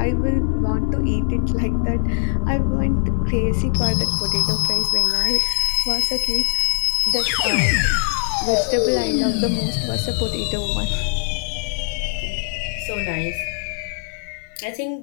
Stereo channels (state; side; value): silent; right; digital silence